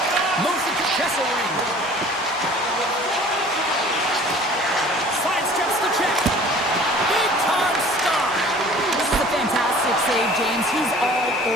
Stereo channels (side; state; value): both; normal; correlation 0.48